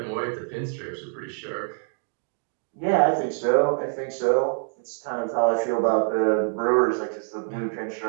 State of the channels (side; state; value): left; silent; 61 dB below the other